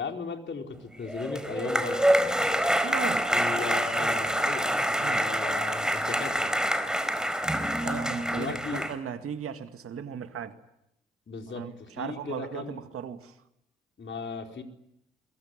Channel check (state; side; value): normal; both; correlation 0.78